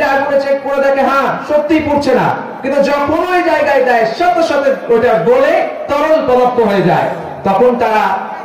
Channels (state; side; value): identical; both; correlation 1.00